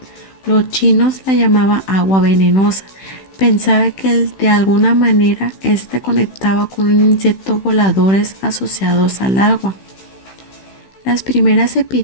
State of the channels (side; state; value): right; late; 16 ms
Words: Los chinos la llamaban agua venenosa. Pensaba que de alguna manera este conectaba con un insecto voladores asociados al agua. Las primeras